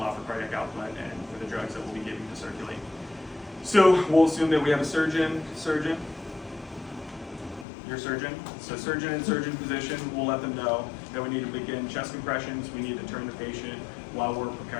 for cardiac output and for the drugs that we'll be giving to circulate. So we'll assume that we have a surgeon, your surgeon. So surgeon in surgeon position, we'll let them know that we need to begin chest compressions. We need to turn the patient while we're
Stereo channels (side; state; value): right; drops out; at 7.7 s